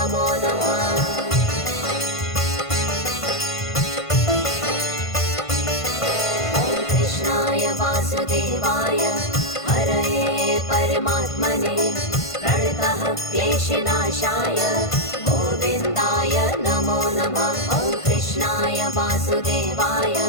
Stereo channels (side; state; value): right; late; 1.5 ms